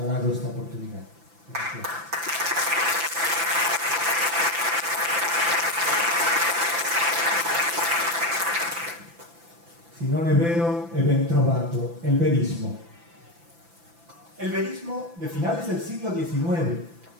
esta oportunidad. Gracias. Si non è vero, è ben trovato, el verismo. El verismo de finales del siglo XIX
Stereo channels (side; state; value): left; late; 5.9 ms